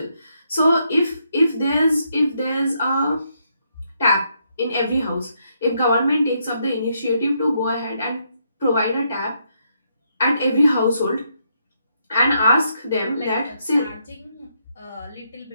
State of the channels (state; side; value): inverted; both; correlation -0.77